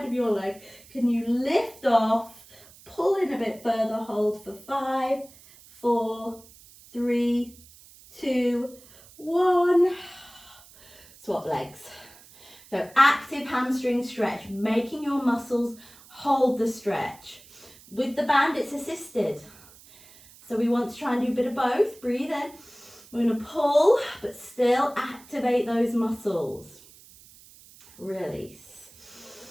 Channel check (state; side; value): noise; right; hiss, 23 dB below the sound